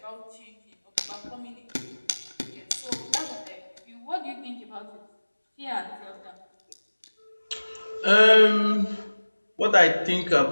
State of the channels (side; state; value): both; inverted; correlation -1.00